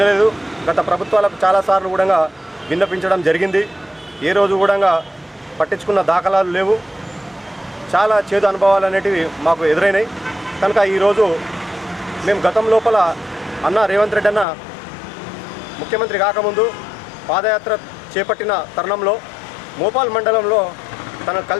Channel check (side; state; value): right; drops out; at 14.5 s